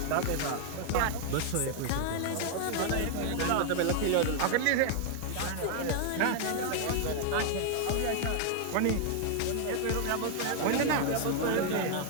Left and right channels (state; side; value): different; both; correlation 0.00